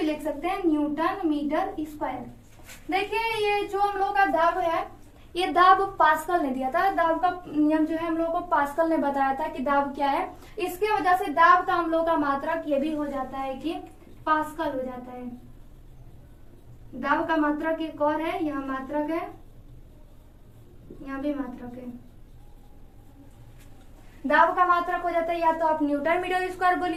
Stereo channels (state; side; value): identical; both; correlation 1.00